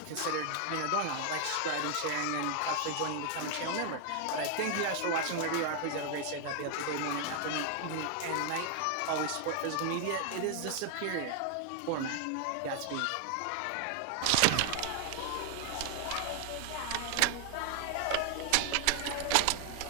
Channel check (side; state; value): both; different; correlation 0.00